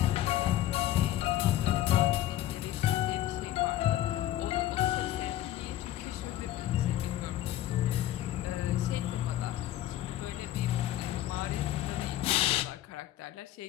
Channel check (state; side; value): quieter; right; 13.5 dB